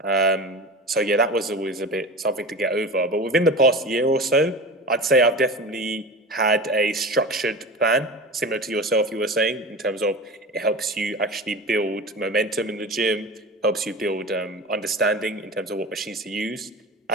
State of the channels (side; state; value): both; normal; correlation 0.30